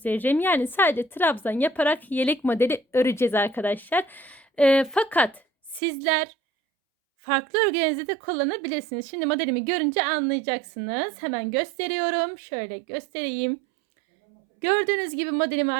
Yani sadece trabzan yaparak yelek modeli öreceğiz arkadaşlar. Fakat sizler farklı örgülerinizde de kullanabilirsiniz. Şimdi modelimi görünce anlayacaksınız. Hemen gösteriyorum. Şöyle göstereyim. Gördüğünüz gibi modelimi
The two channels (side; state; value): left; drops out; at 5.8 s